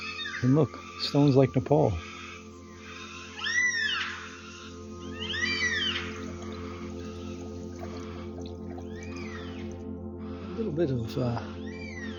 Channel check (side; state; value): both; identical; correlation 1.00